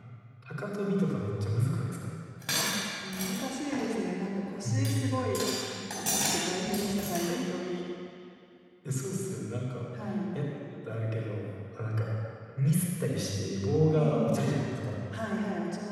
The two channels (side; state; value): both; identical; correlation 1.00